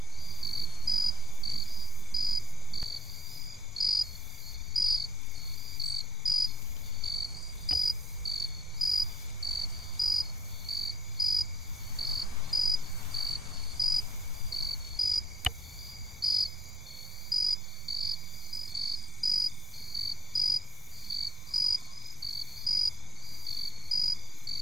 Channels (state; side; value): normal; both; correlation 0.82